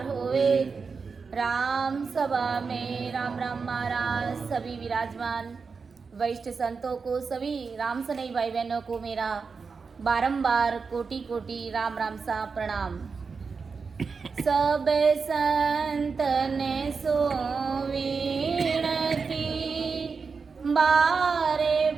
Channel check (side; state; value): left; quieter; 5.1 dB